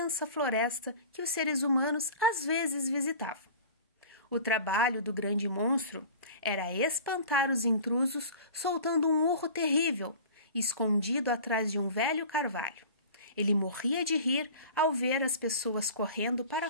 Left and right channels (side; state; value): both; inverted; correlation -0.40